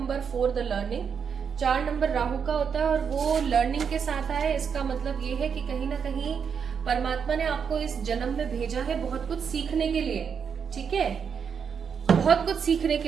4 the learning. 4 number Rahu का होता है और वो लर्निंग के साथ आया। इसका मतलब ये है कि कहीं ना कहीं परमात्मा ने आपको इस जन्म में भेजा है बहुत कुछ सीखने के लिए, ठीक है, बहुत कुछ सीखने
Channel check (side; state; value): left; quieter; 6.8 dB